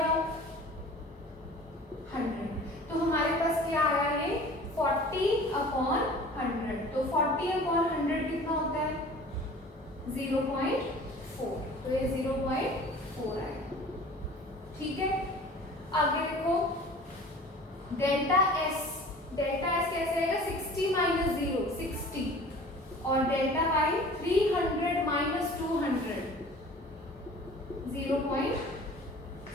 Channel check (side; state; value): both; normal; correlation 0.44